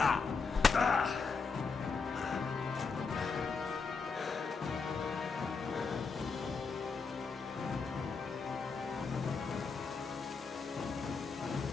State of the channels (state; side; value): quieter; right; 4.9 dB